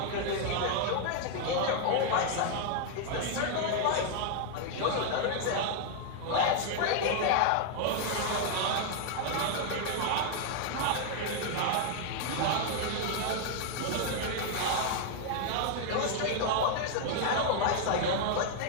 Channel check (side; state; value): both; different; correlation 0.00